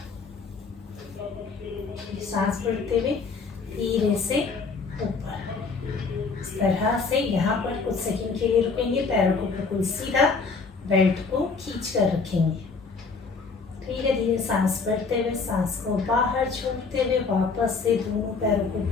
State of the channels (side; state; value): right; quieter; 4.6 dB